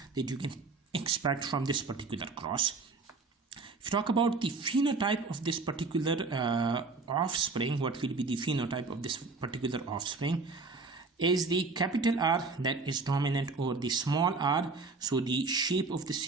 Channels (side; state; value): left; quieter; 4.0 dB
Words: that you can expect from this particular cross. If you talk about the phenotype of this particular offspring, what will be the phenotype of this particular offspring? Is the capital R that is dominant over the small r, so the shape of the